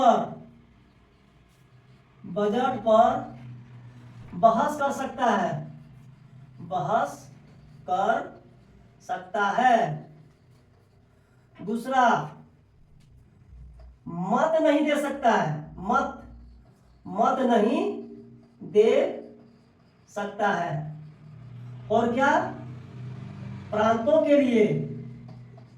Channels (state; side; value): identical; both; correlation 1.00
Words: बहस कर सकता है। दूसरा, मत नहीं दे सकता है, मत मत नहीं दे सकता है। और क्या, प्रांतों के लिए